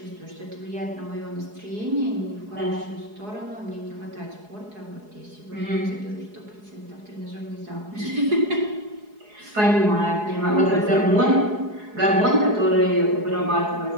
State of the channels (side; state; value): left; late; 4.8 ms